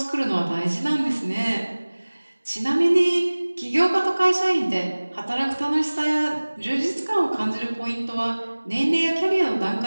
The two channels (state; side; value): inverted; both; correlation -1.00